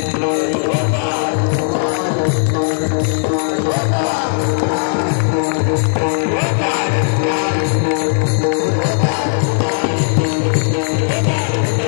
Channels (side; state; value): right; silent; digital silence